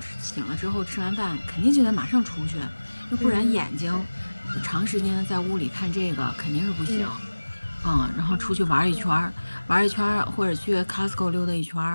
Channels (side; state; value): both; inverted; correlation -1.00